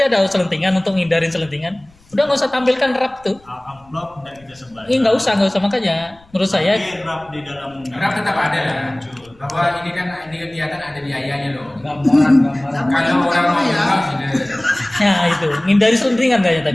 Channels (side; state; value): left; noise; rumble, 29 dB below the sound